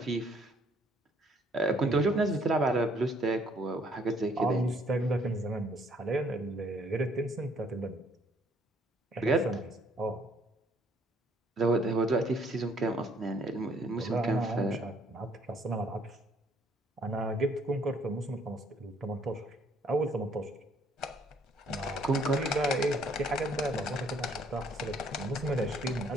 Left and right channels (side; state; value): both; normal; correlation 0.64